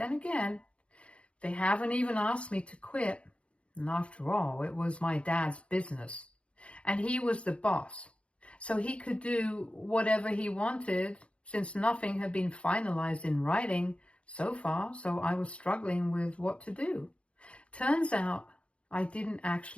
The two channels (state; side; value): late; right; 0.060 ms